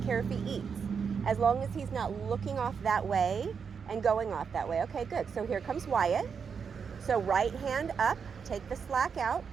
care if he eats. As long as he's not looking off that way and going off that way. Okay, good. So here comes Wyatt. So right hand up, take the slack out,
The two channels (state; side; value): quieter; left; 6.3 dB